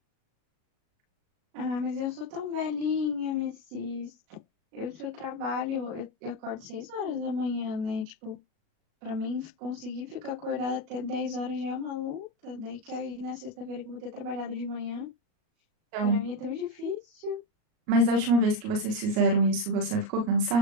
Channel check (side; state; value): left; late; 38 ms